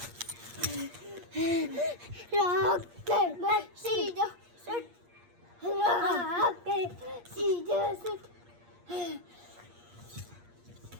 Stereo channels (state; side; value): late; left; 8.5 ms